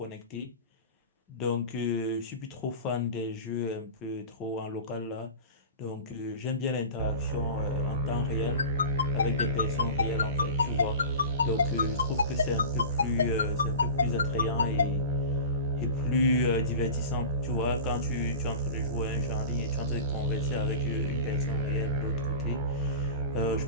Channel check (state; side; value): inverted; both; correlation -0.32